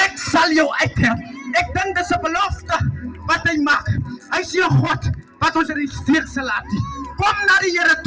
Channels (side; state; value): both; identical; correlation 1.00